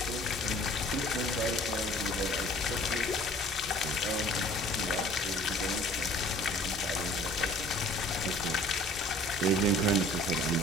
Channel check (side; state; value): both; normal; correlation 0.50